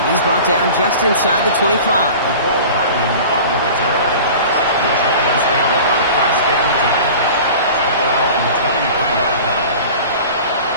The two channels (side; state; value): both; inverted; correlation -0.39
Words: He's brought down just inside the 25. Cole Hardman on the return. The Giants take over 1st and 10 at their own 23-yard line.